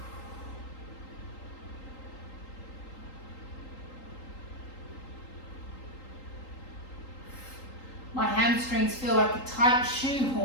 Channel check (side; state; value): right; late; 3.8 ms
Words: My hamstrings feel like a tight